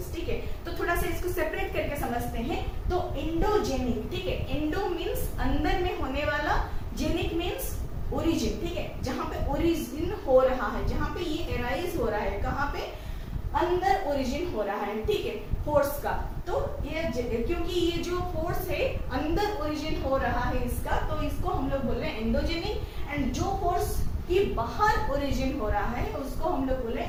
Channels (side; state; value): both; identical; correlation 1.00